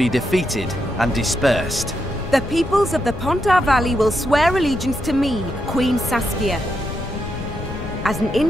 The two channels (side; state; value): left; noise; rumble, 10 dB below the sound